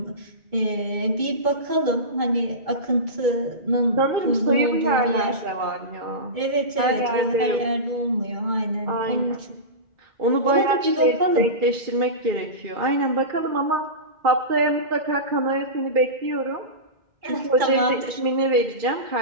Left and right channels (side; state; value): left; late; 2.2 ms